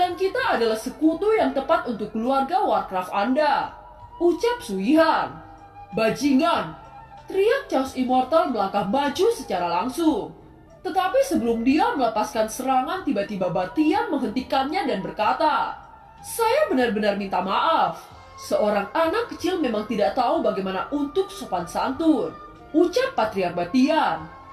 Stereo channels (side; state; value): both; identical; correlation 1.00